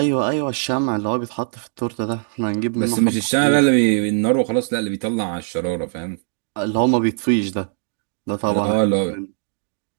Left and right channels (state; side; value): silent; left; digital silence